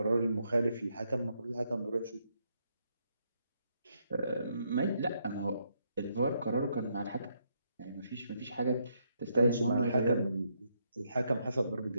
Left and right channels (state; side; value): inverted; both; correlation -0.76